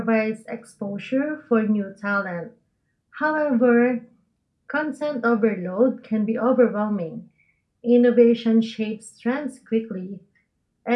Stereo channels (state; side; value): identical; both; correlation 1.00